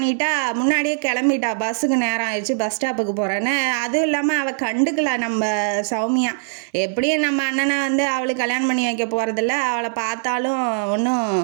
முன்னாடியே கிளம்பிட்டா, பஸ்ஸுக்கு நேரம் ஆயிடுச்சு, பஸ் ஸ்டாப்புக்கு போகிறேன்னு. அதுவும் இல்லாமல் அவள் கண்டுக்கல நம்ம சௌமியா. எப்படியும் நம்ம அண்ணனை வந்து அவளுக்கு கல்யாணம் பண்ணி வைக்க போகிறதில்ல, அவளை பார்த்தாலும் ஒன்றும்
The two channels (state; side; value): silent; left; digital silence